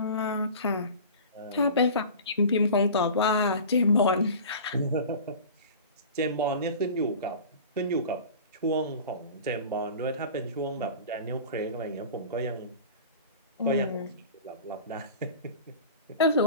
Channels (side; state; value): both; inverted; correlation -0.37